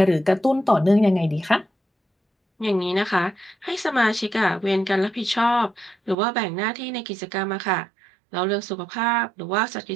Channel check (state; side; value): drops out; left; at 6.2 s